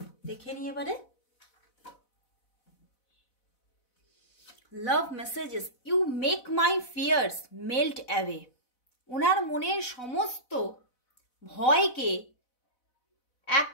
দেখে নিই এবারে। Love messages, you make my fears melt away. ওনার মনের সমস্ত ভয়কে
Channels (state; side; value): late; right; 4.0 ms